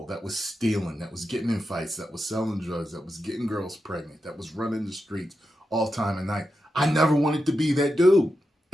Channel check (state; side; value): normal; both; correlation 0.88